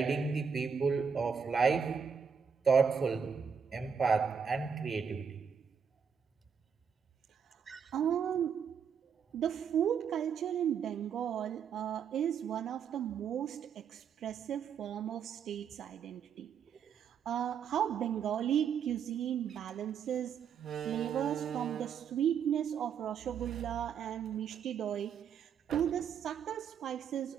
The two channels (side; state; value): left; quieter; 7.0 dB